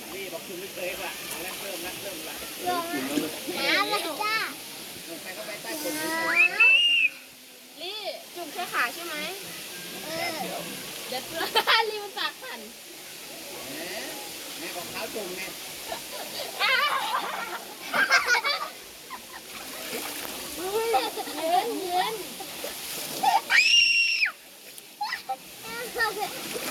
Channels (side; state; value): both; identical; correlation 1.00